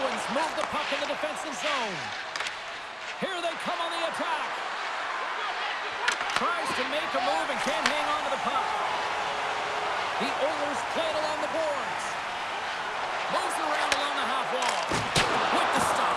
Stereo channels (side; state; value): both; identical; correlation 1.00